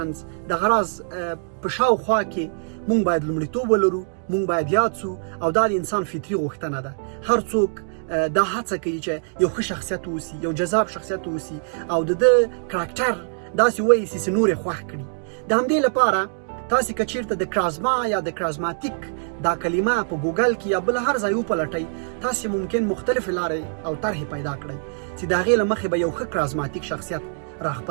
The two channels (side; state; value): left; silent; digital silence